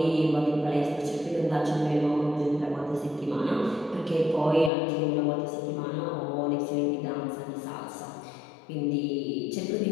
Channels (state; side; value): drops out; right; at 4.7 s